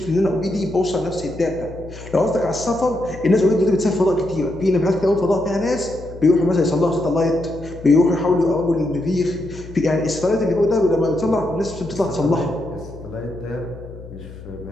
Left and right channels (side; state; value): left; noise; hum, 15 dB below the sound